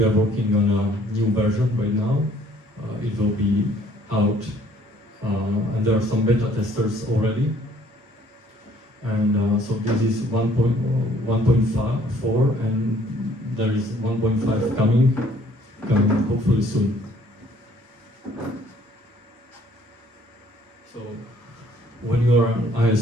on a new version right now. It will be out, and there are some beta testers already. And so this is 1.4, and there is 1.5 coming hopefully soon. So when you are an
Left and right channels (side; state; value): both; normal; correlation 0.60